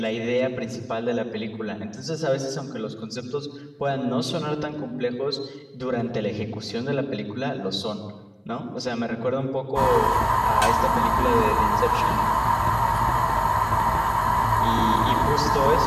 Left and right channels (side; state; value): both; identical; correlation 1.00